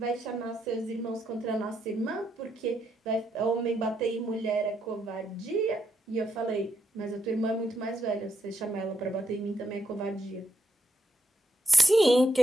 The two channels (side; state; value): both; normal; correlation 0.79